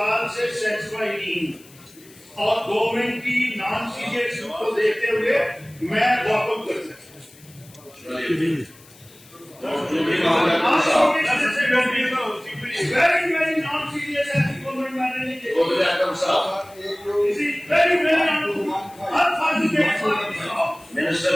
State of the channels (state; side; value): noise; left; hiss, 24 dB below the sound